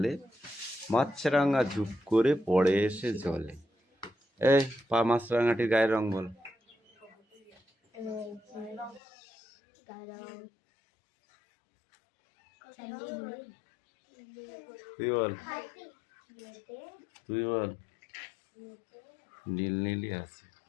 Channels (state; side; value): drops out; right; at 9.0 s